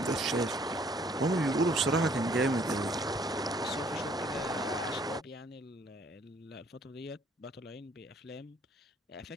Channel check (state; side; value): normal; both; correlation 0.61